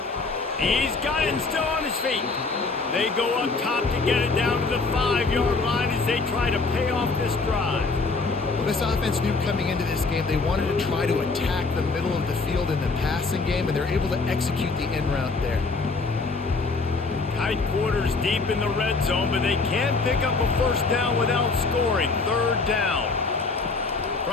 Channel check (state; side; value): quieter; right; 4.0 dB